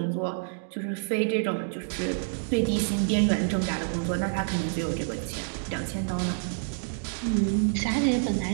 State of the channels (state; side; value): silent; left; digital silence